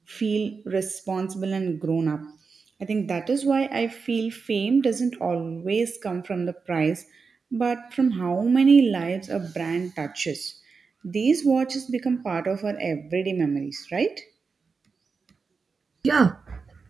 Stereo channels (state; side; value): quieter; left; 4.9 dB